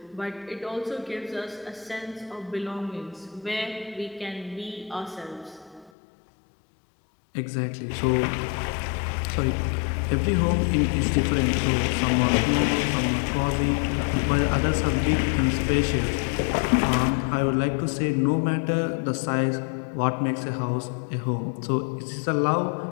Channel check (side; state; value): right; drops out; at 5.9 s